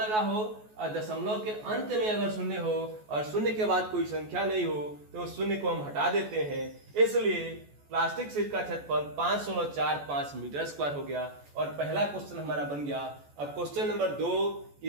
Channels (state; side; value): late; left; 14 ms